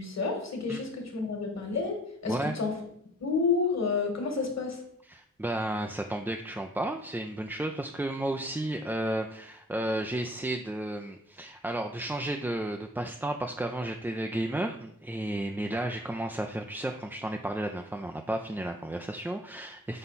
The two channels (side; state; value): both; normal; correlation 0.53